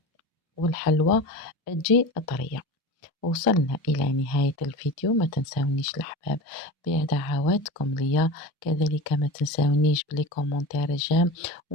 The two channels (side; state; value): both; normal; correlation 0.29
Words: والحلوى تجي طرية. وصلنا إلى نهاية الفيديو، ما تنسونيش الأحباب بدعواتكم ليا، كذلك ما تنسونيش بلي كومنتار جيم،